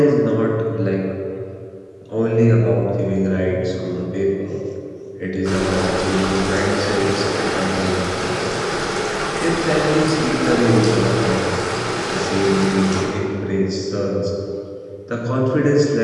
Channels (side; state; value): both; identical; correlation 1.00